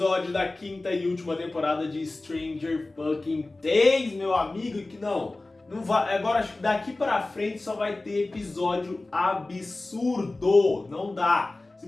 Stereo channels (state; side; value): quieter; right; 3.0 dB